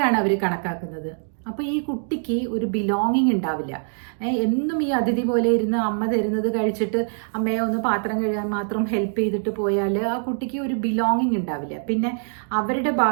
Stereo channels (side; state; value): left; silent; digital silence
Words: അവർ കണക്കാക്കുന്നത്. അപ്പോൾ ഈ കുട്ടിക്ക് ഒരു ബിലോങ്ങിങ് ഉണ്ടാവില്ല. എന്നും ഈ അതിഥി പോലെ ഇരുന്ന് അമ്മ തരുന്നത് കഴിച്ചിട്ട് അമ്മയെ ഒന്ന് പാത്രം കഴുകാൻ മാത്രം ഹെൽപ്പ് ചെയ്തിട്ട് പോയാൽ ആ കുട്ടിക്ക് ഒരു ബിലോങ്ങിങ് ഉണ്ടാവില്ല. പിന്നെ അവരുടെ